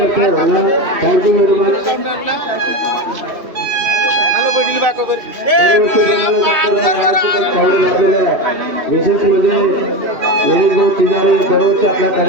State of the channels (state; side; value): late; left; 2.8 ms